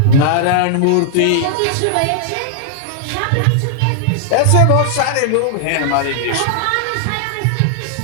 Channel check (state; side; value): different; both; correlation -0.01